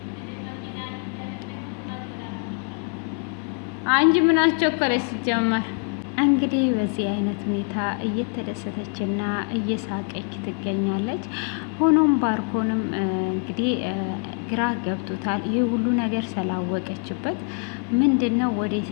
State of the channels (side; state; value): right; quieter; 36.4 dB